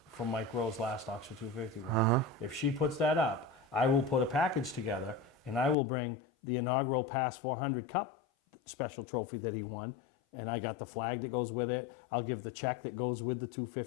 from Mike Rowe's last Oxford 250 win. If she puts that up, I will put a package together and I will bring the inaugural Pass 400 Cup special trophy that he won. And I got the flag that goes with it. I'll give the check that goes with the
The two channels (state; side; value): drops out; right; at 5.8 s